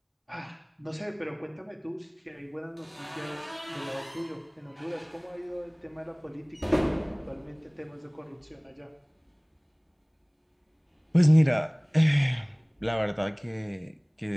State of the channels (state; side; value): identical; both; correlation 1.00